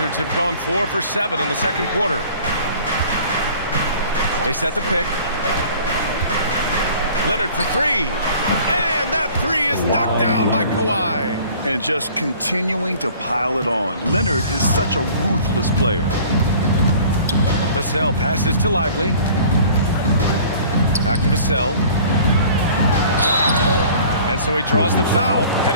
have gone 4 for 7 in the second quarter. They set the pick. Leonard for 3. And that 3 is knocked down by Kawhi. And just continuing to pile it on. Leonard is such a ruthless player. Vassell passes to Lively. Back to Vassell. And so he draws the foul,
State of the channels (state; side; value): inverted; both; correlation -0.49